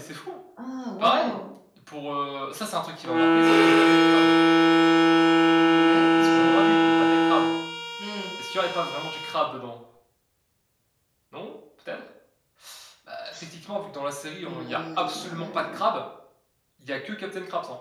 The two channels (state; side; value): identical; both; correlation 1.00